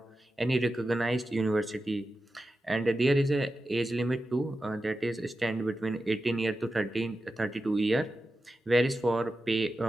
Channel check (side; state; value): both; normal; correlation 0.92